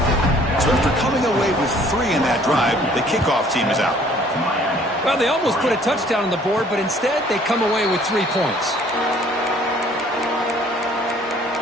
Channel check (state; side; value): normal; both; correlation 0.57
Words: So after coming away with 3 in that drive, the kickoff team is out. Well, they almost put a touchdown on the board, but instead they come away with 3 points.